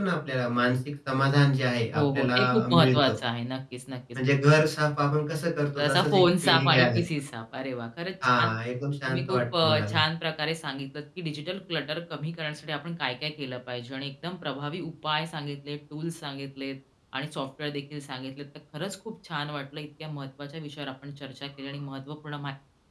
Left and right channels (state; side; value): identical; both; correlation 1.00